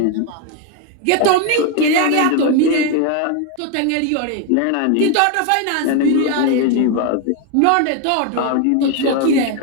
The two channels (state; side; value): different; both; correlation 0.01